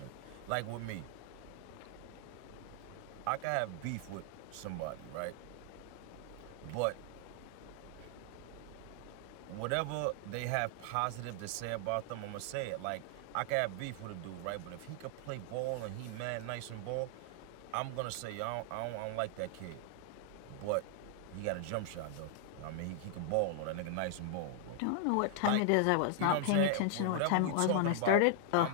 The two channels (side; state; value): both; different; correlation 0.00